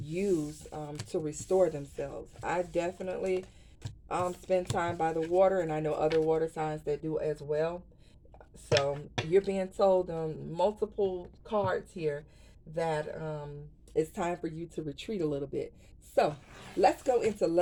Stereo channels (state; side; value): identical; both; correlation 1.00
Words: to restore themselves. I definitely spend time by the water, and I know other water signs that do as well. So you're being told multiple cards here that it's time for you to retreat a little bit. So let's go into